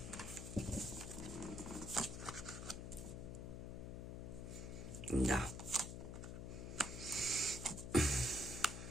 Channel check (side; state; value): left; noise; hum, 6 dB below the sound